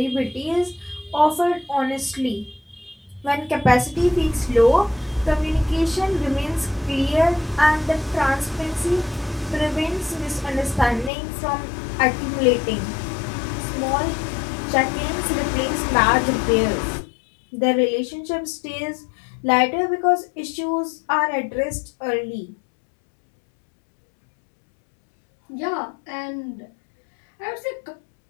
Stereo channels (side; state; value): right; drops out; at 11.1 s